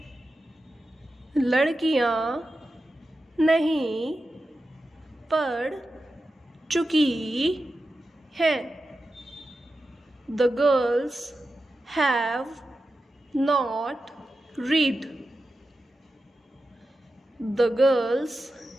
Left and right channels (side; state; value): both; normal; correlation 0.91